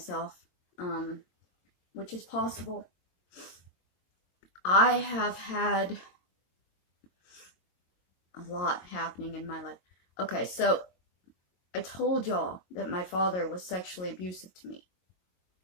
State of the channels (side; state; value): right; late; 22 ms